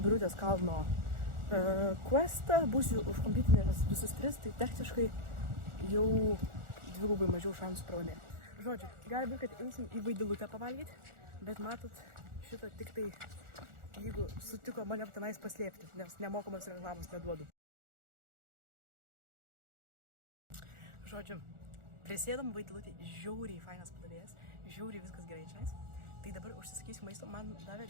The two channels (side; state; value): left; late; 1.4 ms